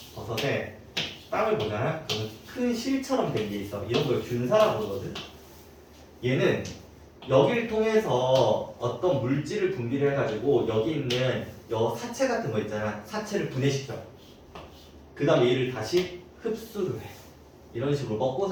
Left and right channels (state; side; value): identical; both; correlation 1.00